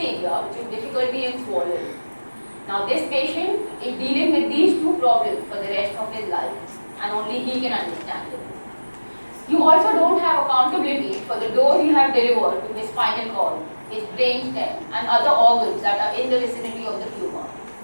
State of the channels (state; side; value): inverted; both; correlation -1.00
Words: which is difficulty in swallowing. Now this patient is dealing with these two problems for the rest of his life and only he can understand it. You also don't have accountability for the dose you have delivered to his spinal cord. his brainstem, and other organs that are in the vicinity of the tumor.